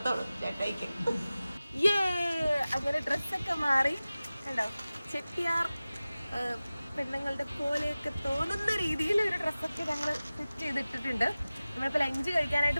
ചേട്ടായിക്ക്. അങ്ങനെ ഡ്രസ്സൊക്കെ മാറി കണ്ടോ, ചെട്ടിയാർ പെണ്ണുങ്ങളുടെ പോലെയൊക്കെ തോന്നുന്ന രീതിയിൽ ഒരു ഡ്രസ്സൊക്കെ ഞങ്ങൾ സെറ്റ് ചെയ്തിട്ടിട്ടുണ്ട്. നമ്മളിപ്പോൾ ലഞ്ച്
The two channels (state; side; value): inverted; both; correlation -0.97